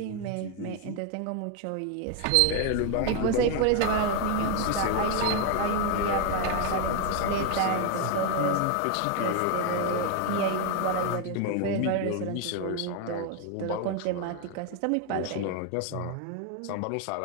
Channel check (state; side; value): different; both; correlation 0.01